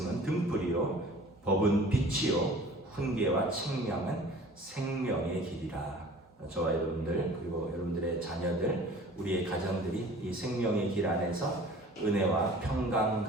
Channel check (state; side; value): normal; both; correlation 0.46